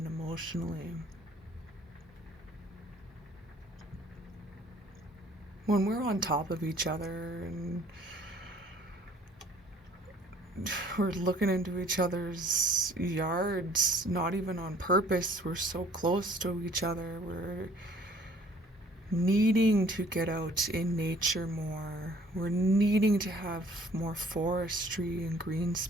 emotionally. When we're on top of each other and we're looking into each other's yards, not even on purpose, we're so close to each other, we're needing to get out in nature more. We're needing to have more forestry and green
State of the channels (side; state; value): both; normal; correlation 0.57